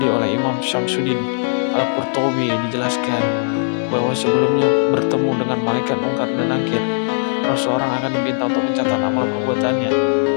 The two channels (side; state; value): right; silent; digital silence